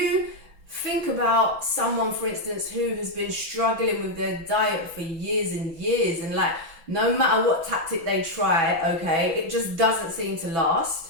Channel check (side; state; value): left; late; 6.0 ms